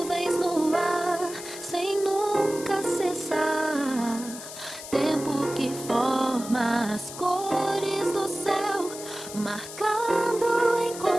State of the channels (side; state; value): left; noise; hiss, 12 dB below the sound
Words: no ar, sem nunca cessar. Tempo que forma as cores do céu, marcando o